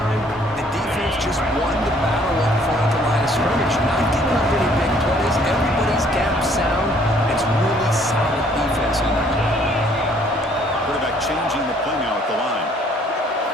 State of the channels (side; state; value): both; normal; correlation 0.61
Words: the defense just won the battle up front at the line of scrimmage. Not giving up any big plays. Everybody's gap sound. It's really solid defense on that play. Quarterback changing the play now at the line.